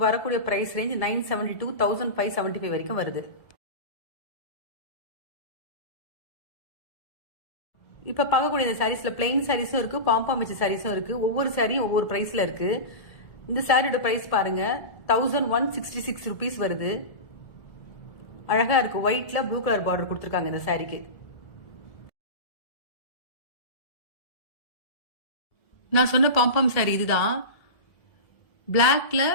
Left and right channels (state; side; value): late; right; 1.7 ms